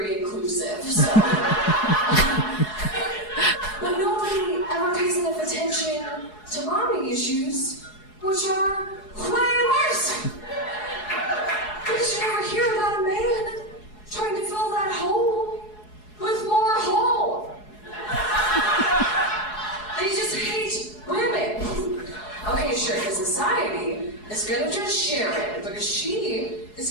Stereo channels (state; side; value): late; right; 4.7 ms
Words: inclusive. So, but nobody ever pays enough attention to mommy issues, which are way worse. Because you never hear about a man trying to fill that hole with more hole. They just hate women. Okay, sure, because society is gonna judge Sharon because she is